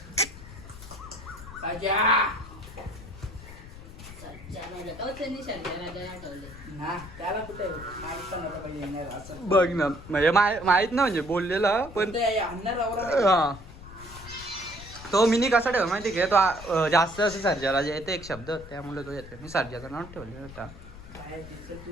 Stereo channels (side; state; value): left; noise; rumble, 15 dB below the sound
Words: राजा त्याला कुठे बघ ना म्हणजे माहित ना म्हणजे बोललेला पण हा तो मिनी कसा ठेव माहिती का तो जास्त असं सर्जाला जे येते एक शब्द त्यामुळे तो येते. मी सर्जाचं नाव ठेवले होता.